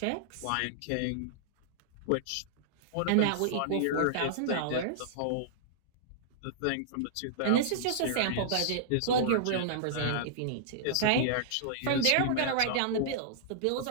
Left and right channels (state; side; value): different; both; correlation -0.02